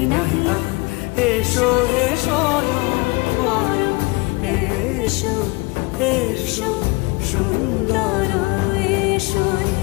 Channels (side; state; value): right; quieter; 25.7 dB